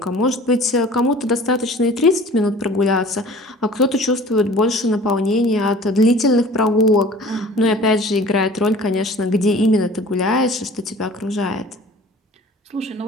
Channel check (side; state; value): both; normal; correlation 0.45